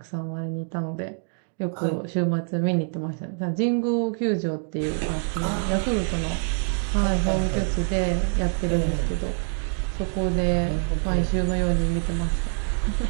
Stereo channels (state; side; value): silent; left; 56 dB below the other